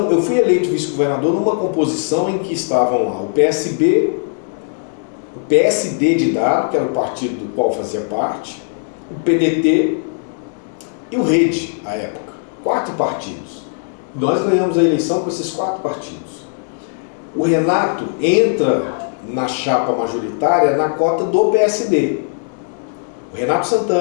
eu fui eleito vice-governador numa composição em que estavam lá o PSB, o PSD de Dado, que era o partido do qual fazia parte, o PDT e o Rede, à época. 4 partidos. Nós ganhamos a eleição com esses 4 partidos. O Renato entra na chapa majoritária na cota do PSD. O Renato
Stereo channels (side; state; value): right; silent; digital silence